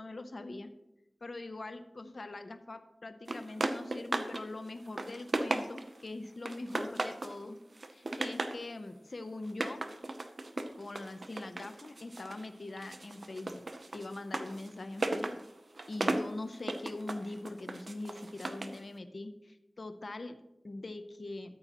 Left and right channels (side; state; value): both; normal; correlation 0.96